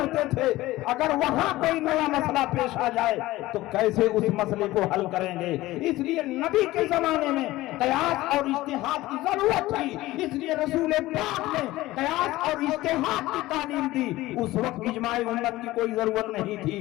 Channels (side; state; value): right; quieter; 17.6 dB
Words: تھے، اگر وہاں کوئی نیا مسئلہ پیش آ جائے تو کیسے اس مسئلے کو حل کریں گے؟ اس لیے نبی کے زمانے میں قیاس اور اجتہاد کی ضرورت تھی، اس لیے رسول پاک نے قیاس اور اجتہاد کی تعلیم دی۔ اس وقت اجماع امت کی کوئی ضرورت نہیں تھی،